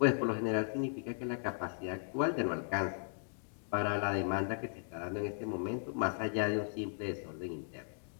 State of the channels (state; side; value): silent; right; digital silence